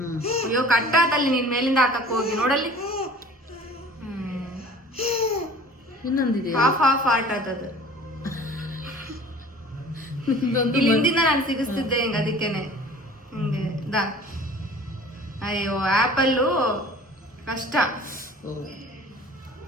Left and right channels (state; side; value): normal; both; correlation 0.46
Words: ಅಯ್ಯೋ ಕಟ್ಟಾತಲ್ಲಿ, ನೀನ್ ಮೇಲಿಂದ ಹಾಕಕ್ ಹೋಗಿ ನೋಡಲ್ಲಿ. ಇನ್ನೊಂದಿದೆ, ಹಾಫ್ ಆರ್ಟ್ ಆತದ. ಇಲ್ಲಿ ಹಿಂದಿನ ನಾನು ಸಿಗಿಸ್ತಿದ್ದೆ ಹಿಂಗ, ಅದಕ್ಕೇನೆ ಹಿಂಗೆ ದಾ. ಅಯ್ಯೋ ಆಪಲ್ಲು ಕಷ್ಟ,